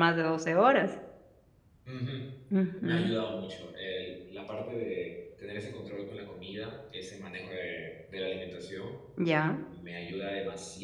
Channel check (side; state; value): both; identical; correlation 1.00